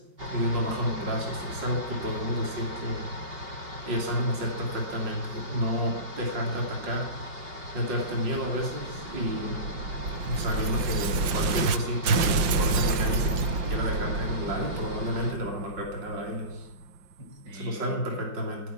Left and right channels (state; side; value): late; left; 5.7 ms